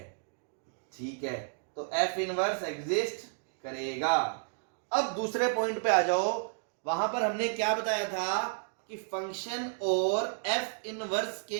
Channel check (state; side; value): silent; left; digital silence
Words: ठीक है, तो एफ इनवर्स एग्जिस्ट करेगा। अब दूसरे पॉइंट पे आ जाओ। वहां पर हमने क्या बताया था कि फंक्शन और एफ इनवर्स